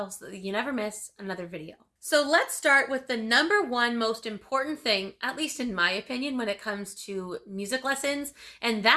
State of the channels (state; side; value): identical; both; correlation 1.00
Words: so that you never miss another video. So let's start with the number one most important thing, at least in my opinion, when it comes to music lessons, and